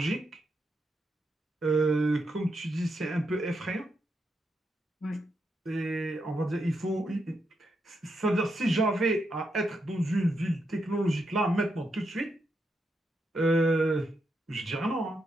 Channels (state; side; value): normal; both; correlation 0.82